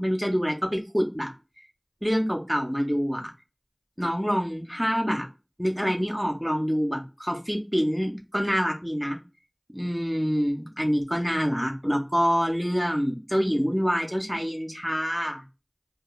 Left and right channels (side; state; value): both; identical; correlation 1.00